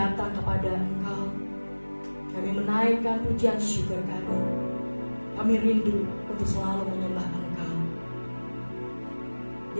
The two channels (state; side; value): inverted; both; correlation -1.00